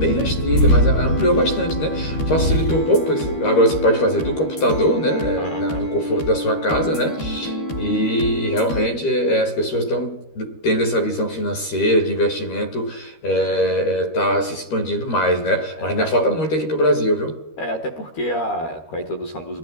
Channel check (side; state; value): right; late; 13 ms